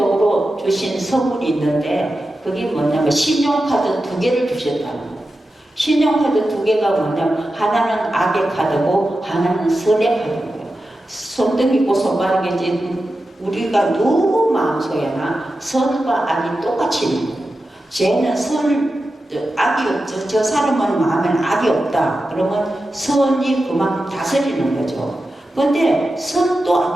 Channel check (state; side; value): normal; both; correlation 0.91